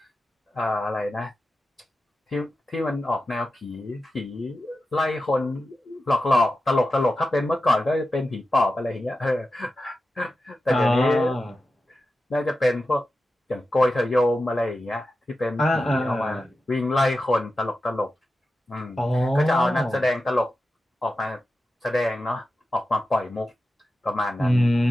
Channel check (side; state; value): both; normal; correlation 0.92